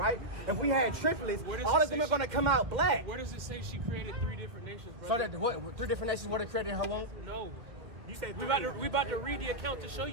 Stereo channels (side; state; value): left; late; 1.9 ms